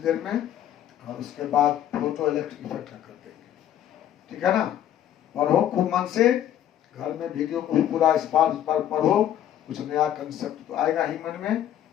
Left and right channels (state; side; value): quieter; right; 11.1 dB